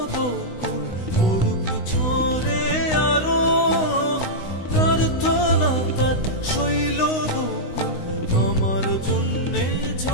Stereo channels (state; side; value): late; right; 16 ms